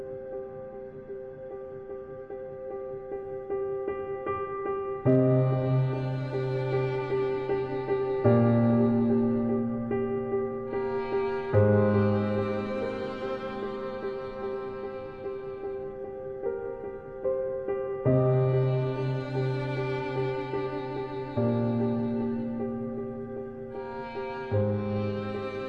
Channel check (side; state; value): both; identical; correlation 1.00